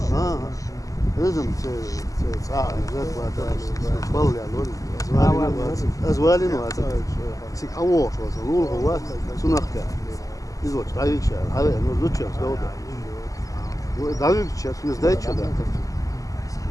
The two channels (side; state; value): right; late; 0.17 ms